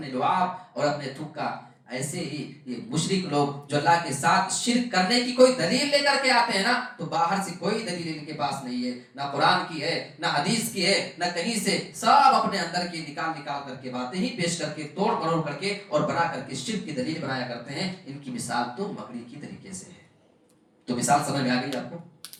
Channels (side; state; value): both; identical; correlation 1.00